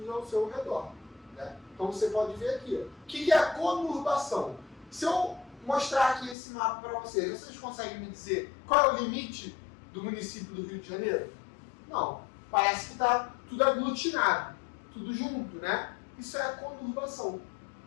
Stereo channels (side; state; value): right; drops out; at 6.4 s